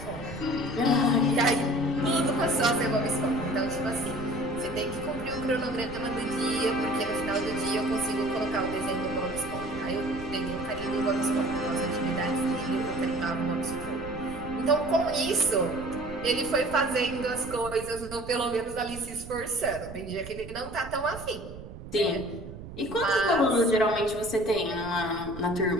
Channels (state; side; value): noise; right; rumble, 12 dB below the sound